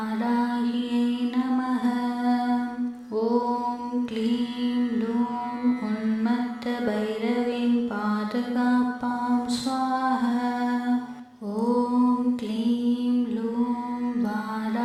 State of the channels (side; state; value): both; identical; correlation 1.00